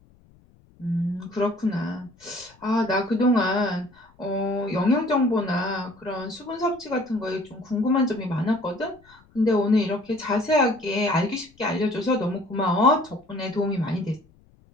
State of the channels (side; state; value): left; noise; rumble, 30 dB below the sound